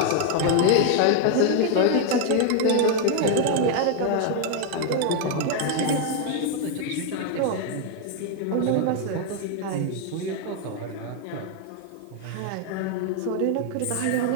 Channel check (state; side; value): different; both; correlation 0.00